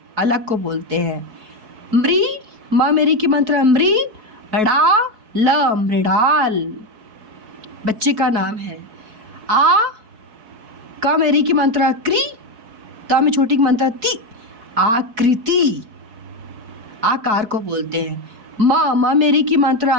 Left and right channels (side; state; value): left; late; 4.5 ms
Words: अलग को बोलते हैं। मृ, माँ मेरी की मात्रा मृ, ड़ा ल मृडाल, बच्चे का नाम है। आ, का मेरी की मात्रा क्री, ता में छोटी की मात्रा ती, आकृति, आकार को बोलते हैं। माँ मेरी की मात्रा